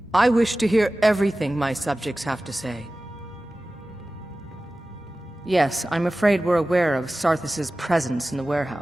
I wish to hear everything my subjects have to say. Yes, I'm afraid we're aware of Sarthis' presence in the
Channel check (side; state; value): both; normal; correlation 0.96